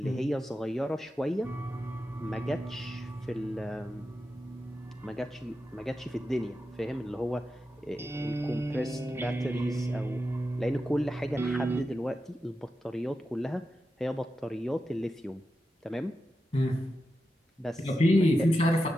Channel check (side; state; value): both; normal; correlation 0.89